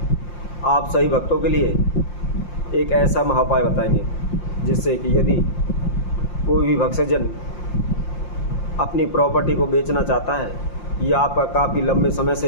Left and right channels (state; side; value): late; right; 5.7 ms